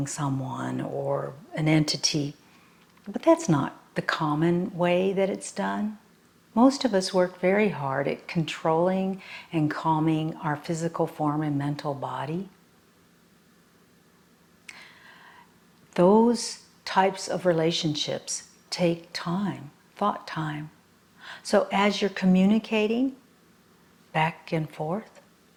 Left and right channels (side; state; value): both; identical; correlation 1.00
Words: someone or an entity, but that's not the common way that it's done. Most of us work very hard at controlling and calming our physical form and mental body. Those types of relationships take time, thought time. So as you're communicating back and forth,